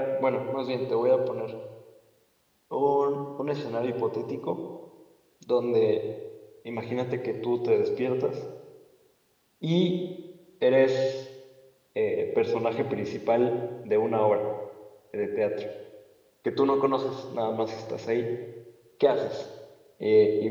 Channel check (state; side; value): identical; both; correlation 1.00